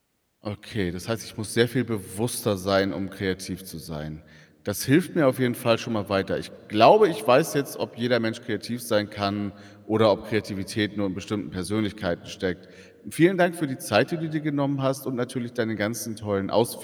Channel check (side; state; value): both; identical; correlation 1.00